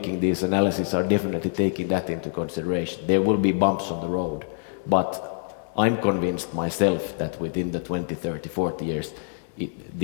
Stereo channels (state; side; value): silent; right; 61 dB below the other